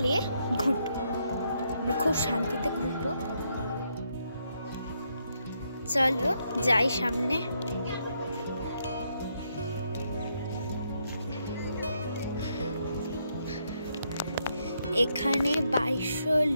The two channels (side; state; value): both; inverted; correlation -0.77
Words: ঘুরব, আমরা খুব শান্তিতে ঘুরব। চলো যাই সামনে। এখানে 2200